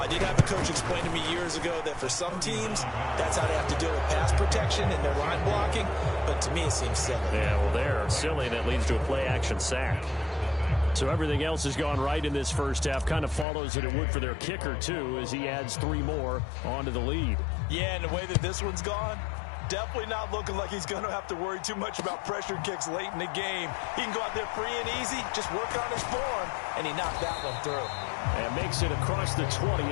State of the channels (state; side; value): drops out; right; at 13.5 s